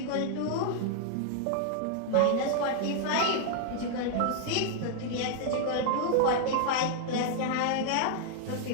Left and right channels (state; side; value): different; both; correlation 0.00